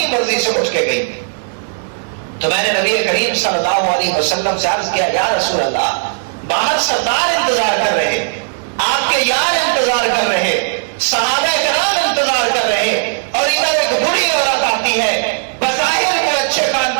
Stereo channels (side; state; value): left; silent; digital silence